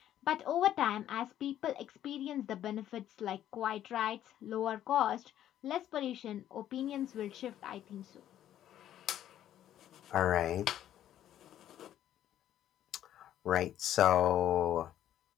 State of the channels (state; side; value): quieter; right; 11.6 dB